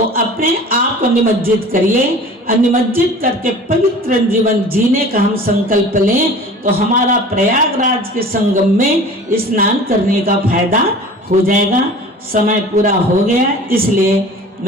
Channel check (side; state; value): both; normal; correlation 0.42